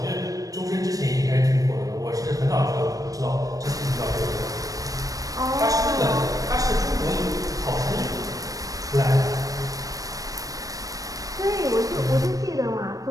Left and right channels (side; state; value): left; late; 0.17 ms